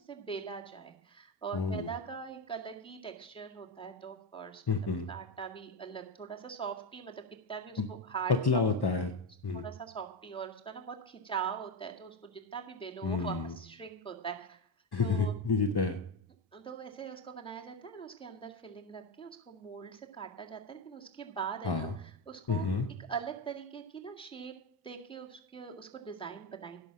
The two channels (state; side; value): normal; both; correlation 0.14